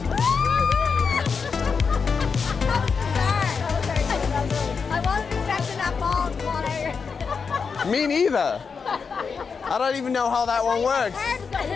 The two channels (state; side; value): quieter; right; 5.5 dB